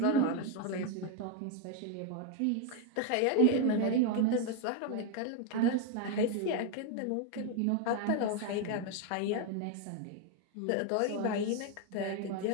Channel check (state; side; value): different; both; correlation 0.01